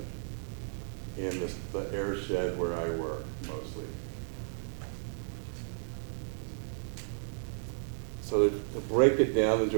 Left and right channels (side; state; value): left; silent; digital silence